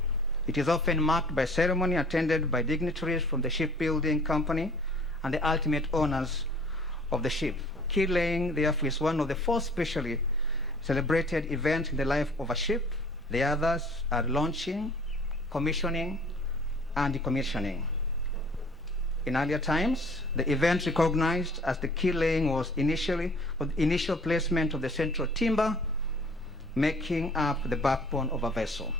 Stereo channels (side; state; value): both; normal; correlation 0.52